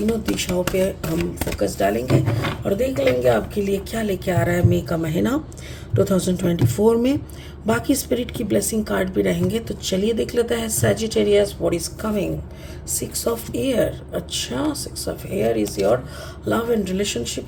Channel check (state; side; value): identical; both; correlation 1.00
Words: दिशाओं पे हम फोकस डालेंगे और देख लेंगे आपके लिए क्या लेके आ रहा है मई का महीना 2024 में. बाकी स्पिरिट की ब्लेसिंग कार्ड भी रहेंगे. तो चलिए देख लेते हैं Sagittarius what is coming. 6 of air. अच्छा, 6 of air is your love and